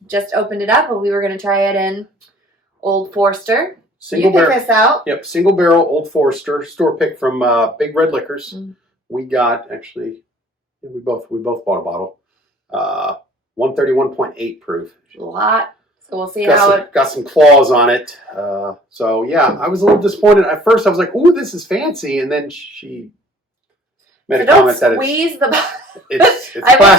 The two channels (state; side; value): normal; both; correlation 0.53